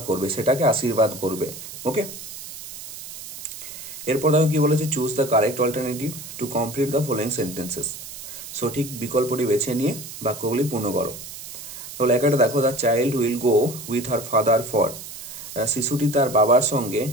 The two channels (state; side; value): noise; right; hiss, 12 dB below the sound